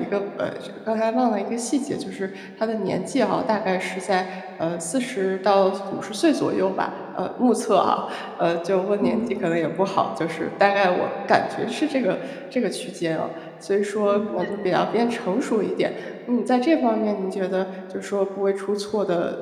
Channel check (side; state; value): both; identical; correlation 1.00